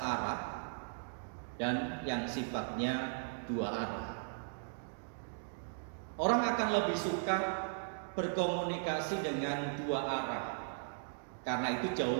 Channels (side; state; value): left; silent; digital silence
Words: dan yang sifatnya dua arah. Orang akan lebih suka berkomunikasi dengan dua arah karena itu jauh